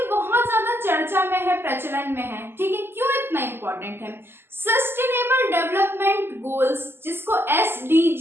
बहुत ज्यादा चर्चा में है, प्रचलन में है, ठीक है। क्यों इतना इंपॉर्टेंट है? सस्टेनेबल डेवलपमेंट गोल्स, जिसको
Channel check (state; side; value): late; left; 0.11 ms